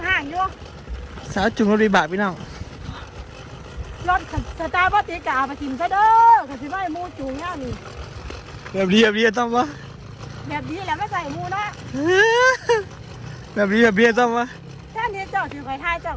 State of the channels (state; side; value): identical; both; correlation 1.00